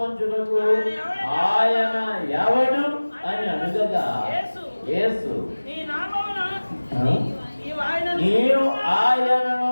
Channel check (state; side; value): inverted; both; correlation -1.00